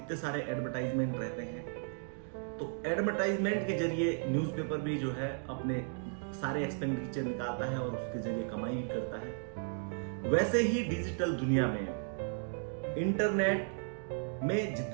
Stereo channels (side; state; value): left; silent; 54 dB below the other